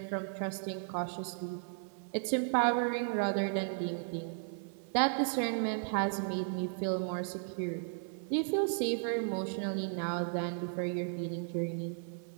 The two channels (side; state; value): left; silent; 54 dB below the other